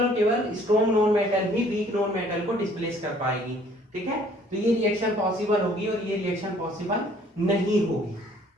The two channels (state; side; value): normal; both; correlation 0.58